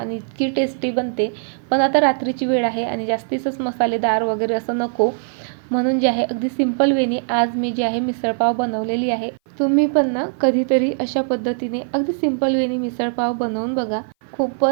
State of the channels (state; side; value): silent; left; 59 dB below the other